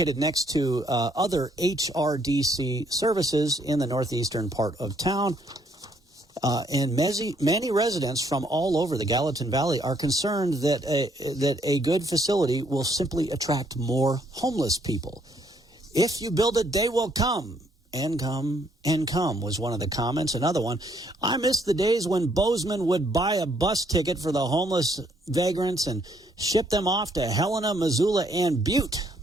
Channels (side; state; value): both; normal; correlation 0.69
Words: next to other HRDC services in the northeastern part of town. And many residents from all over the Gallatin Valley are concerned that a good facility will simply attract more homeless people. If you build it, they will come. And come was one of the comments. Another one, I miss the days when Bozeman would buy a bus ticket for the homeless vagrants and ship them off to Helena, Missoula, and Butte.